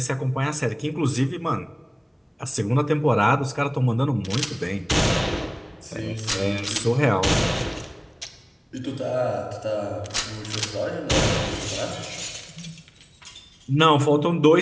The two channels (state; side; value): identical; both; correlation 1.00